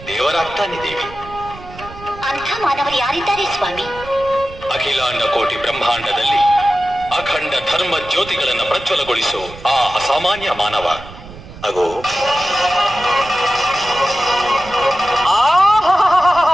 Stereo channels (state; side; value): noise; right; rumble, 16 dB below the sound